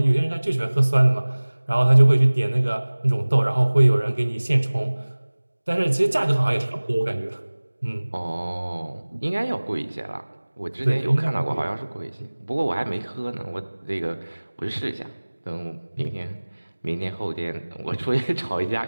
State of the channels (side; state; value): both; inverted; correlation -1.00